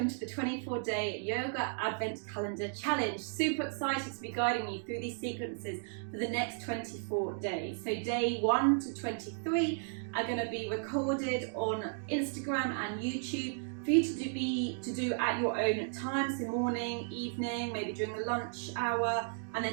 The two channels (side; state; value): left; silent; digital silence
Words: to the 24-day Yoga Advent Calendar Challenge. Super excited to be guiding you through these sequences for the next 24 days. So day 1 to 23 are going to be recorded on Instagram and YouTube for you to do at your own time, so morning, evening, maybe during the lunch hour, and